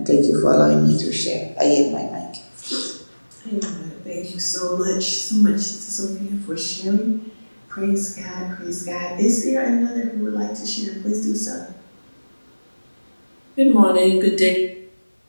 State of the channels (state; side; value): inverted; both; correlation -1.00